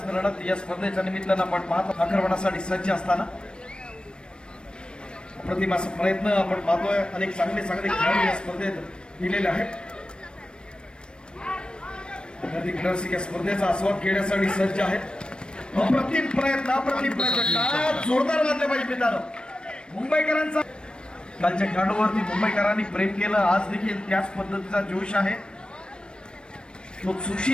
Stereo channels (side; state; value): right; late; 0.053 ms